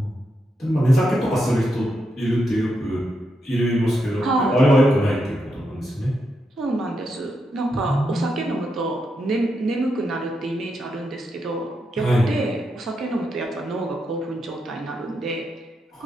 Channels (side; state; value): both; normal; correlation 0.83